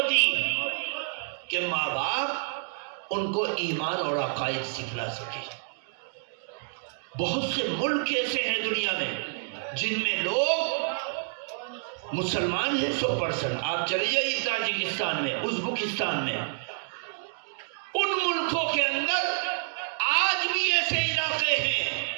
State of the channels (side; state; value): left; silent; digital silence